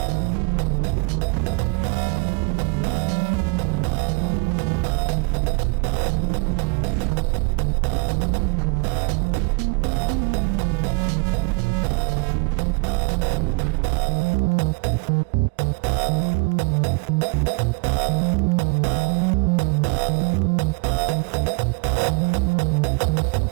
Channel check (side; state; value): left; quieter; 31.8 dB